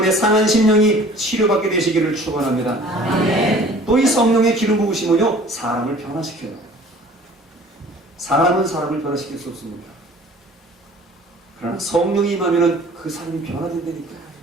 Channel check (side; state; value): both; normal; correlation 0.49